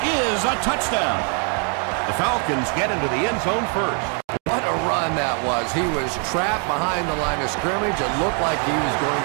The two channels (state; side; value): quieter; left; 39.9 dB